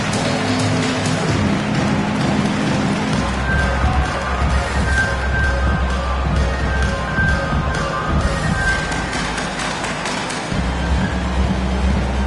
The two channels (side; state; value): both; identical; correlation 1.00